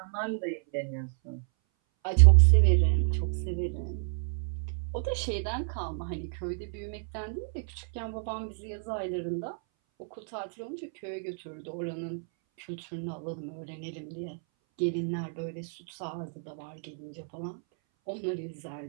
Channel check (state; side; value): silent; left; 58 dB below the other